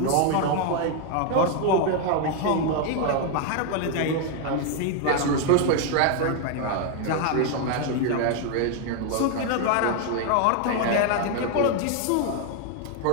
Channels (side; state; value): both; different; correlation 0.00